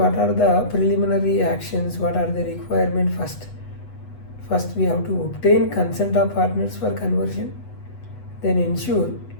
are the preliminary actions, what are the requirements first. First we have to obtain consent of partners for conversion, then ensure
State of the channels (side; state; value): right; late; 8.1 ms